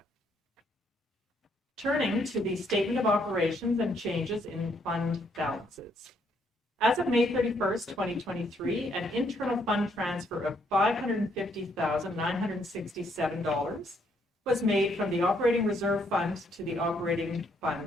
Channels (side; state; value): both; normal; correlation 0.71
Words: Turning to the statement of operations and changes in fund balances. As of May 31st, 2023, an internal fund transfer of $550,967 was made from the operating reserve fund to the operating